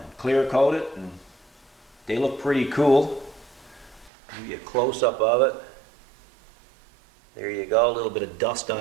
clear coated, and they look pretty cool. Give you a close-up of it. There you go, a little bit of dust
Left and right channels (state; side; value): drops out; left; at 4.1 s